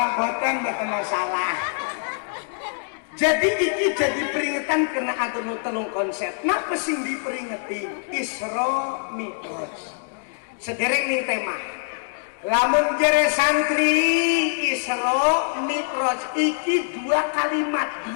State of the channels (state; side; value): silent; right; digital silence